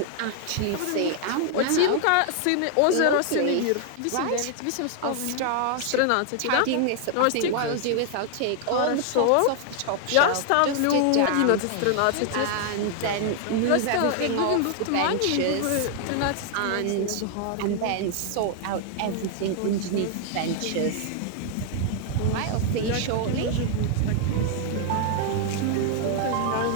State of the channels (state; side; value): different; both; correlation 0.00